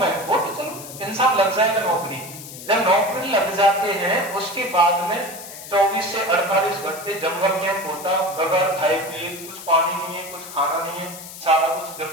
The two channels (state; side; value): noise; left; hiss, 13 dB below the sound